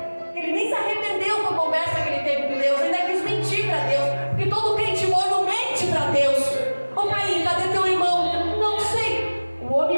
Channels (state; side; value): inverted; both; correlation -1.00